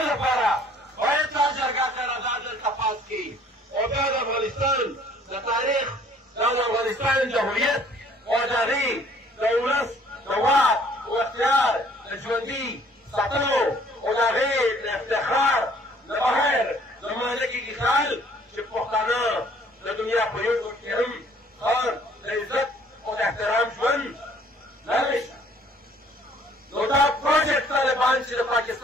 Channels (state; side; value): normal; both; correlation 0.58